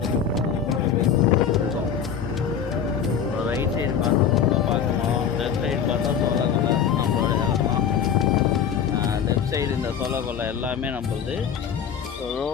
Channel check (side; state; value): right; quieter; 7.8 dB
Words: ரைட் சைடு பார்த்தா பார்க்கணும், லெஃப்ட் சைடு பார்த்தா சோளக்கொல்லை நம்மளோட இடம் தான். லெஃப்ட் சைடு இந்த சோளக்கொல்லை எல்லாமே நம்மளுது.